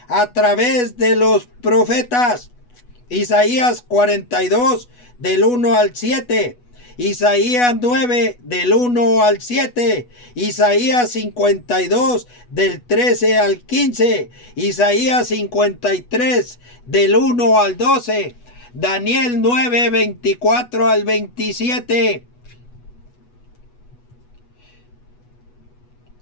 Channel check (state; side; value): late; right; 8.2 ms